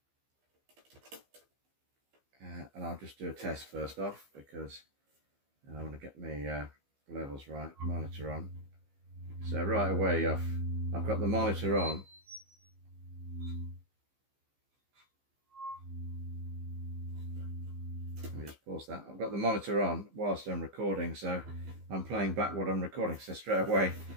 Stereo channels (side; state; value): left; late; 15 ms